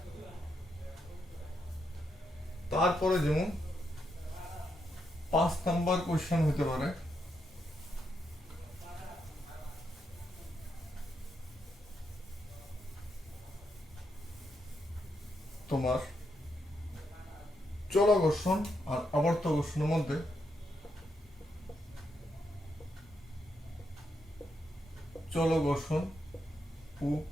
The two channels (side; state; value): both; normal; correlation 0.81